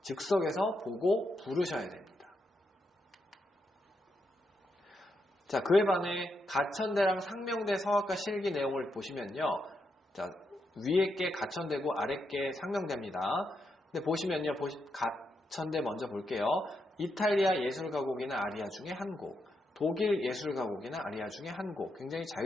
즉석에서 보고 부르셔야 됩니다. 자, 그에 반해 가천대랑 상명대 성악과 실기 내용을 보시면요. 자, 위에 게 가천대고 아래 게 상명대입니다. 근데 보시면요. 가천대 먼저 볼게요. 이탈리아 예술가곡이나 아리아 중에 한 곡, 독일 예술가곡이나 아리아 중에 한 곡. 굉장히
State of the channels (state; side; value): normal; both; correlation 0.82